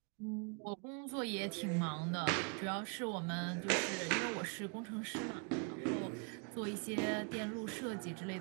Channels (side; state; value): left; quieter; 35.9 dB